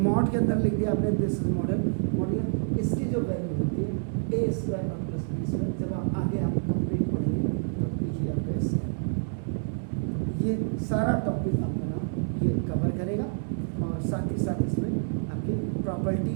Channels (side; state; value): left; silent; digital silence